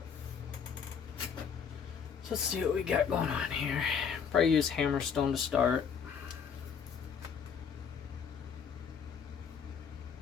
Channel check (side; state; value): right; quieter; 6.8 dB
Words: So let's see what we got going on here. Probably use hammerstone to start.